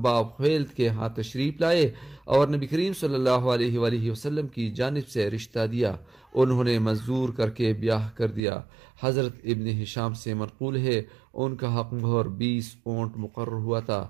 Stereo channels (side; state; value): left; drops out; at 8.4 s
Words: باپ خیلد کے ہاں تشریف لائے اور نبی کریم صلی اللہ علیہ وآلہ وسلم کی جانب سے رشتہ دیا۔ انہوں نے منظور کر کے بیاہ کر دیا۔ حضرت ابن ہشام سے منقول ہے ان کا حق مہر 20 اونٹ مقرر ہوا تھا،